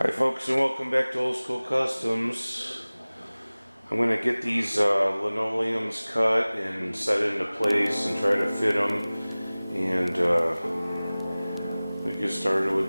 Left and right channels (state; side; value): inverted; both; correlation -0.99